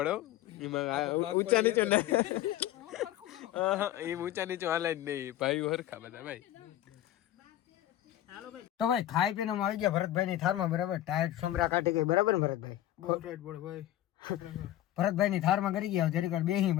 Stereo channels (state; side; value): quieter; right; 13.6 dB